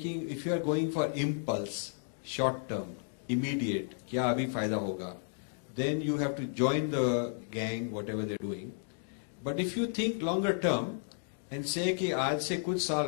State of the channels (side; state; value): right; silent; digital silence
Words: going for impulse, short-term, immediate, क्या अभी फायदा होगा, then you have to join the gang, whatever they're doing. But if you think longer-term and say कि आज से कुछ